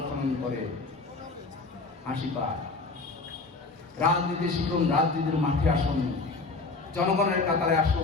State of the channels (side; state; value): right; quieter; 3.8 dB